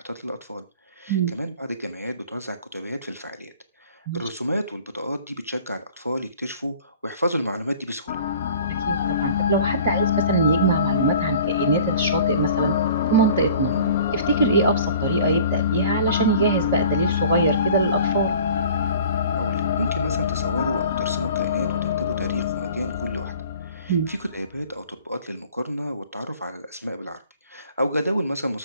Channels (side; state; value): both; inverted; correlation -0.48